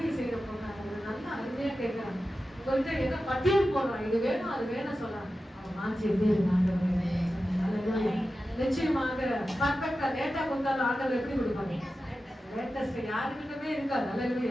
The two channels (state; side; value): normal; both; correlation 0.93